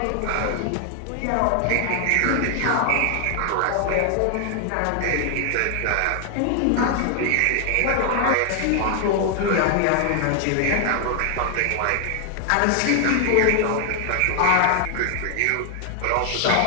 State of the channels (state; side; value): different; both; correlation 0.00